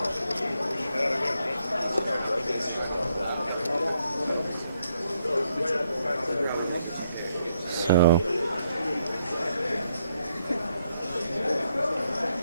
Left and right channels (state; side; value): inverted; both; correlation -0.76